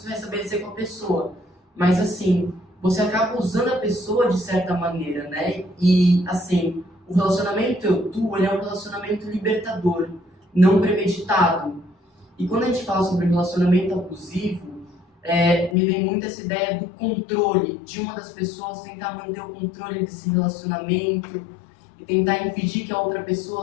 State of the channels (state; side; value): drops out; right; at 15.8 s